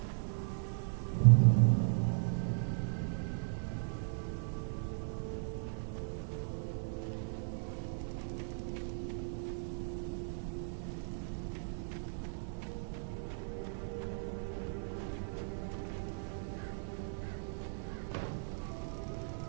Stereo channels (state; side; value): silent; left; 53 dB below the other